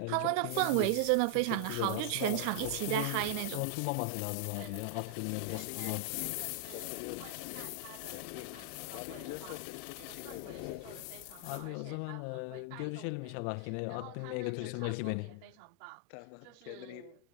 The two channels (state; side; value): different; both; correlation -0.01